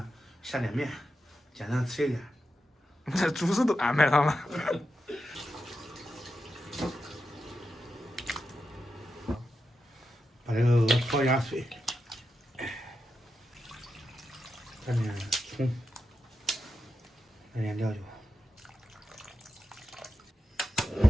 下点面，简单吃一点。这主食都安排上了。把这个鹅焯下水，蘸点葱，来点料酒。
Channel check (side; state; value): both; normal; correlation 0.88